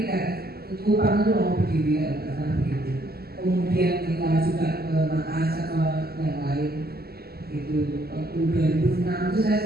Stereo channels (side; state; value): left; late; 0.45 ms